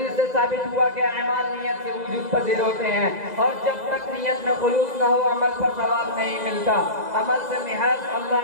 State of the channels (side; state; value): left; late; 2.0 ms